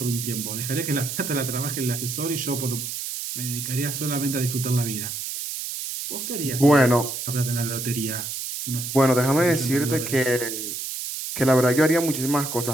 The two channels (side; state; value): right; noise; hiss, 5 dB below the sound